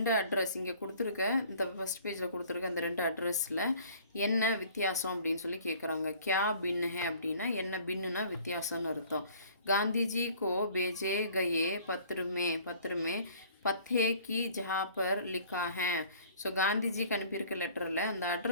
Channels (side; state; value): both; inverted; correlation -0.53